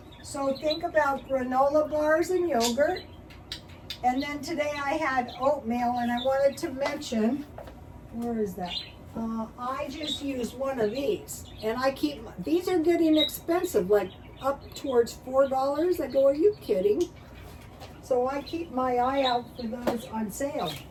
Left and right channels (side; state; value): both; identical; correlation 1.00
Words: so think about granola bars and yogurt. And then today I had oatmeal, and I wanted to mention, where is that? I just use one of these, and I keep, these are getting expensive, like up towards $4. I go, are you kidding? So I keep my eye out for those on sale.